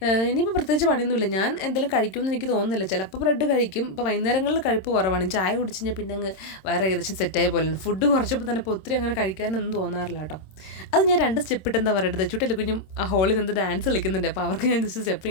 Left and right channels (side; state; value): right; late; 26 ms